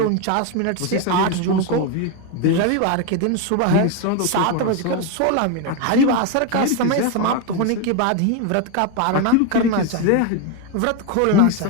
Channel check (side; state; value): both; different; correlation 0.02